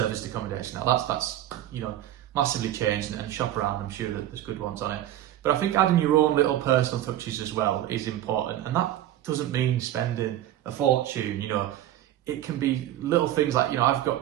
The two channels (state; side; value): quieter; left; 12.9 dB